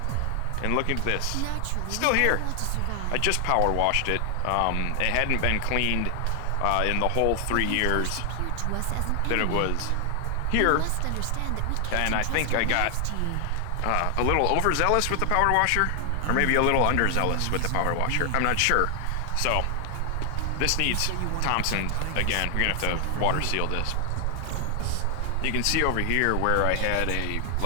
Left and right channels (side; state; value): both; different; correlation 0.00